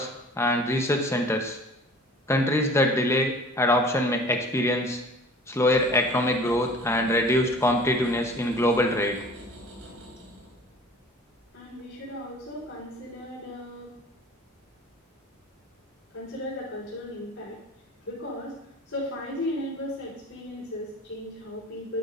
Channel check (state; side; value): normal; both; correlation 0.45